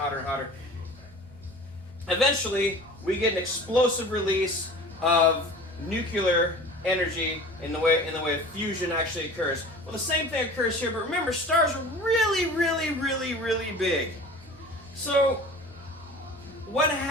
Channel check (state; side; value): noise; right; hum, 27 dB below the sound